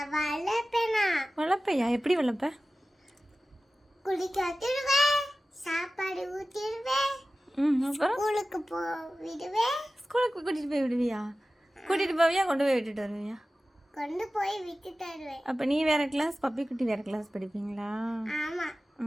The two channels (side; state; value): both; normal; correlation 0.95